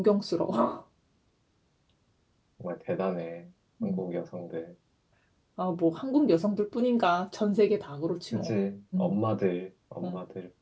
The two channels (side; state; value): both; identical; correlation 1.00